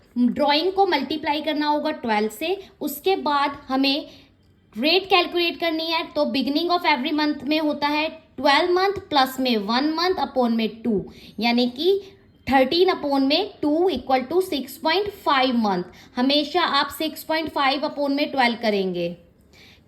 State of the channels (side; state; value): both; identical; correlation 1.00